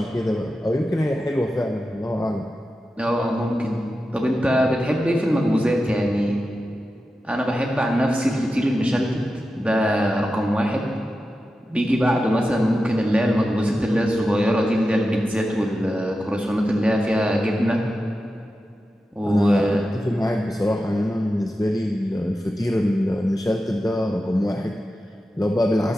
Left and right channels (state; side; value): normal; both; correlation 0.91